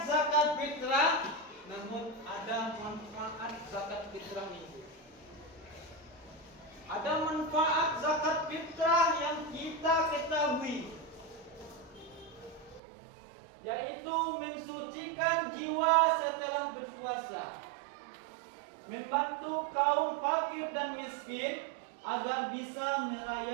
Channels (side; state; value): left; drops out; at 12.8 s